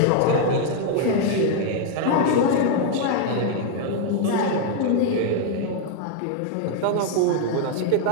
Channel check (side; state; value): both; different; correlation 0.00